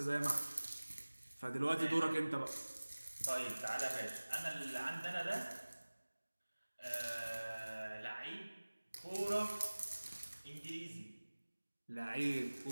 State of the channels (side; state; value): both; inverted; correlation -1.00